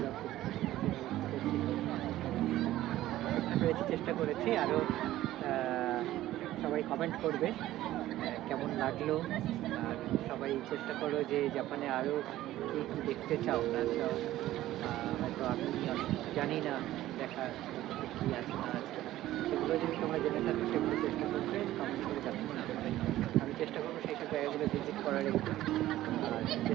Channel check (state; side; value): quieter; left; 14.8 dB